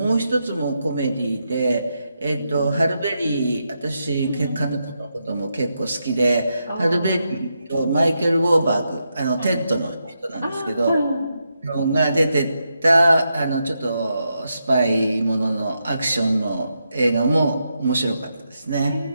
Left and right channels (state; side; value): inverted; both; correlation -0.84